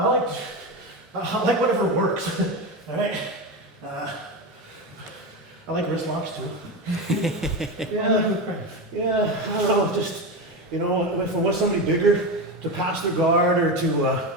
like whatever works. All right. I like wrist locks too. Yeah. I don't know. Just if I want somebody bigger to pass their guard or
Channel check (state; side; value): normal; both; correlation 0.18